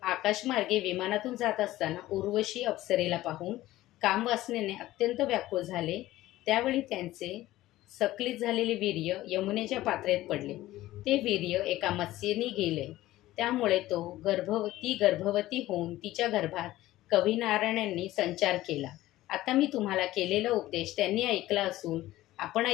आकाशमार्गे विमानातून जात असताना उर्वशी अप्सरेला पाहून कामवासनेने अत्यंत व्याकुळ झाले. त्यावेळी त्यांचे सक्लित झालेले वीर्य यमुनेच्या पात्रेत पडले. ते वीर्य एका मत्स्येने गेले. त्यामुळे तो गर्भवती होऊन तिच्या गर्भात कविनारायणांनी संचार केला. आता मी तुम्हाला केलेला उपदेश त्यांनी ऐकला असून आपण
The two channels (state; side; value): quieter; right; 16.0 dB